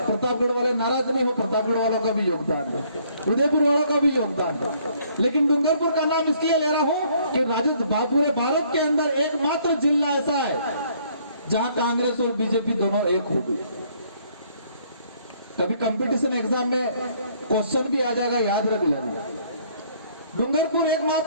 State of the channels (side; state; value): both; inverted; correlation -0.64